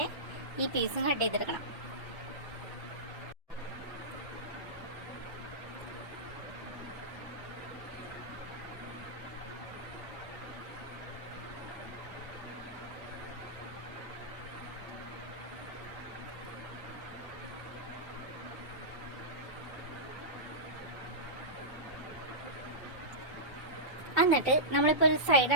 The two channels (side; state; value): both; normal; correlation -0.15